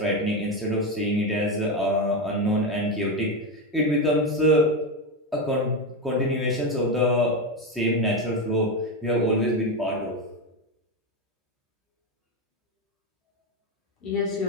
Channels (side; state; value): both; normal; correlation 0.12